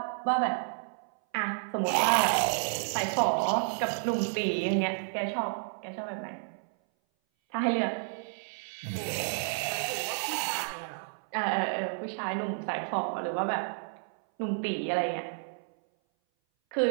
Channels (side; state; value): left; silent; 57 dB below the other